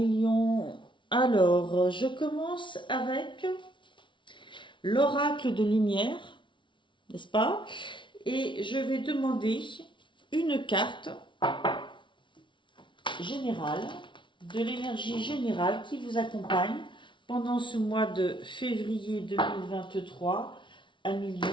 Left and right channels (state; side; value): late; right; 0.24 ms